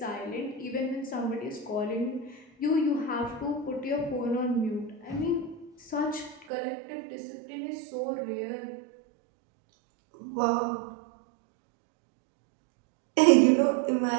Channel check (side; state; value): left; drops out; at 6.5 s